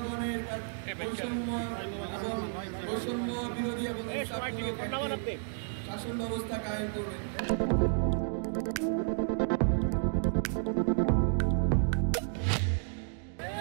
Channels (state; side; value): silent; left; digital silence